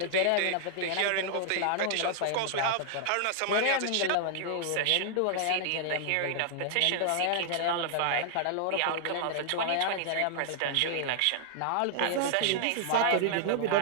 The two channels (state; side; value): different; both; correlation -0.01